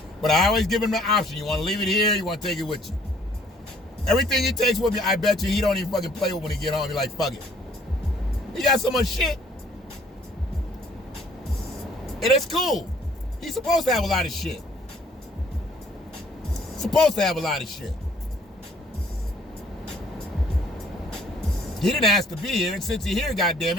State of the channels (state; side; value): normal; both; correlation 0.60